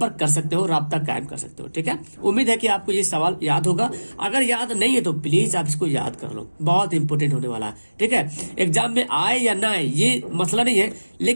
कर सकते हो, राब्ता कायम कर सकते हो। ठीक है, उम्मीद है कि आपको ये सवाल याद होगा। अगर याद नहीं है तो प्लीज आप इसको याद कर लो, बहुत इंपॉर्टेंट होने वाला है। ठीक है, एग्जाम में आए या ना आए ये मसला नहीं है,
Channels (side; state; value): both; inverted; correlation -1.00